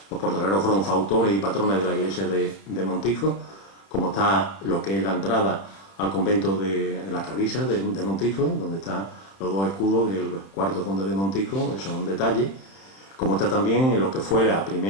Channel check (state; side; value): late; right; 31 ms